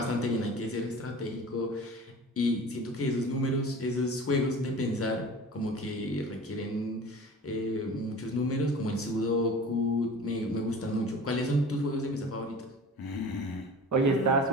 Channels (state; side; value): normal; both; correlation 0.39